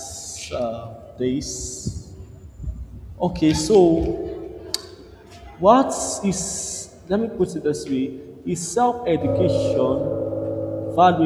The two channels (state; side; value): identical; both; correlation 1.00